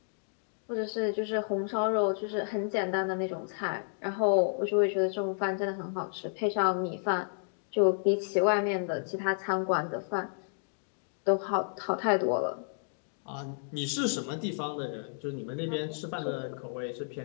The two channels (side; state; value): right; silent; digital silence